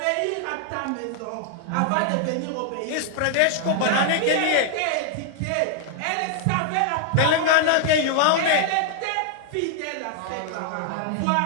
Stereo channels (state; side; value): different; both; correlation 0.00